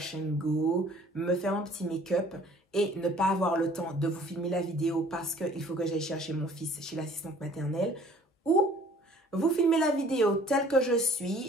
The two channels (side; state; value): both; normal; correlation 0.54